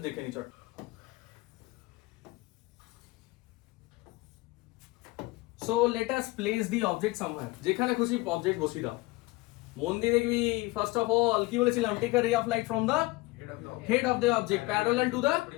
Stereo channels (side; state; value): right; quieter; 21.3 dB